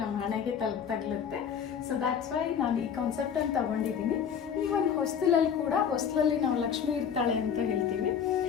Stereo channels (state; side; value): quieter; right; 7.6 dB